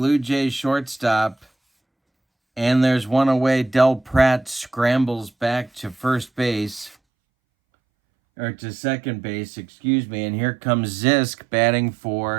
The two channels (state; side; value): drops out; left; at 7.0 s